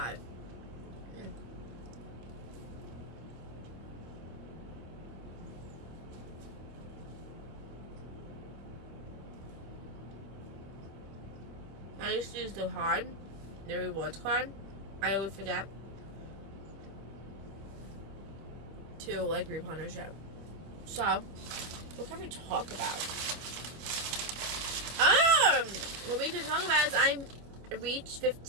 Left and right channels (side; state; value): left; late; 25 ms